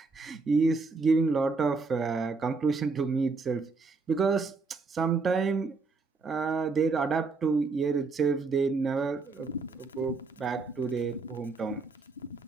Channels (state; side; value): quieter; left; 4.1 dB